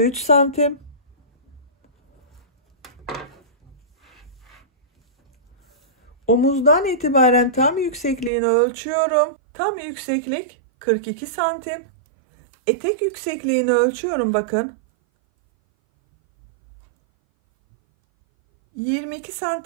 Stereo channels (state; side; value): drops out; left; at 8.3 s